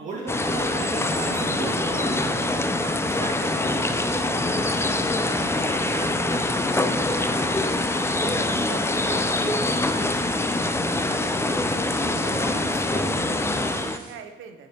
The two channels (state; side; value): normal; both; correlation 0.48